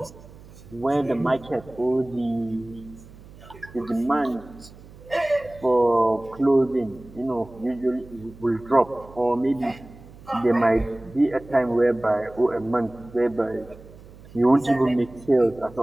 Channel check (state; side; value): noise; right; hum, 20 dB below the sound